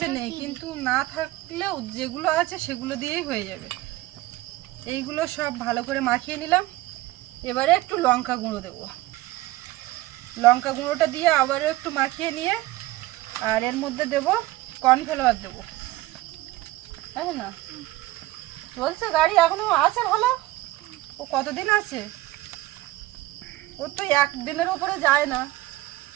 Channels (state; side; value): quieter; left; 17.7 dB